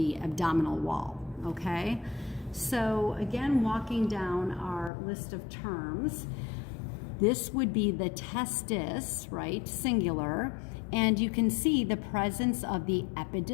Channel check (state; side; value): drops out; right; at 4.9 s